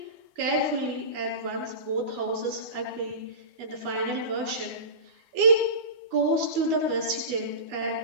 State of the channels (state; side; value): late; left; 12 ms